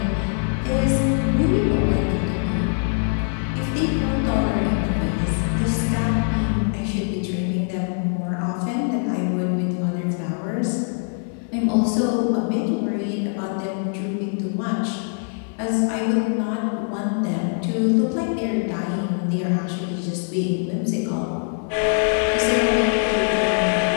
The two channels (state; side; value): silent; right; 55 dB below the other